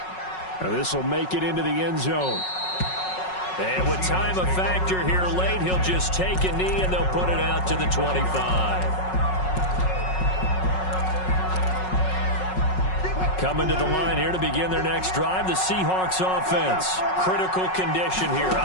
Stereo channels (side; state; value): right; late; 5.4 ms